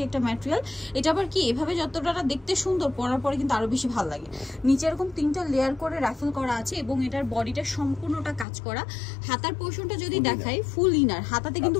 একটা ম্যাটেরিয়াল। এটা আবার কি এভাবে যতটা দেখতে সুন্দর, পরার পরে কিন্তু আরো বেশি ভালো লাগে। নিচে এরকম 3টা লেয়ার করে রাফেল করা আছে এবং এটার বডিটা সম্পূর্ণটা কাজ করা। হাতার পোর্শনটা যদি দেখাই ফুল ইনার, হাতাতে কিন্তু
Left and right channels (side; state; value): right; drops out; at 8.5 s